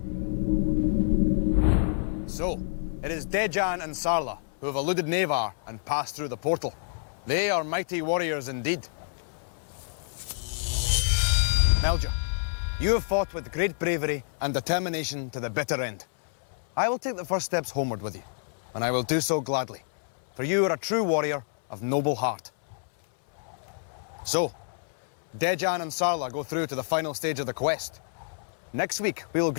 So, it is Dejan and Sarla who have eluded Nevar and passed through the portal. They are mighty warriors indeed. Melja, you have fought with great bravery and determination to the bitter end. I will take the first steps homeward with you, and I will do so gladly, for you are a true warrior of noble heart. So, Dejan and Sarla go through to the final stage of the quest. Next week, we will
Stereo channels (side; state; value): right; silent; 59 dB below the other